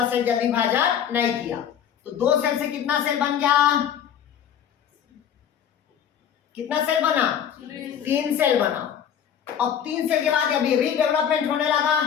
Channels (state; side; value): quieter; right; 8.9 dB